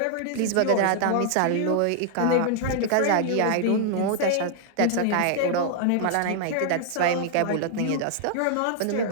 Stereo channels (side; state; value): both; different; correlation 0.00